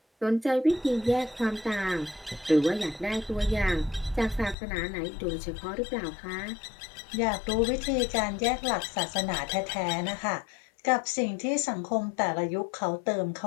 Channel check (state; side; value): drops out; right; at 4.5 s